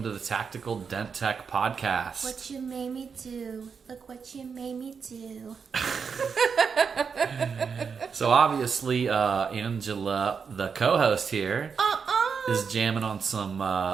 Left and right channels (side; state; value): left; quieter; 6.0 dB